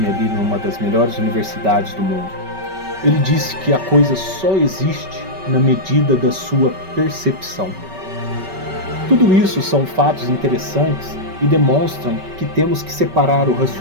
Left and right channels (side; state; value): left; late; 5.3 ms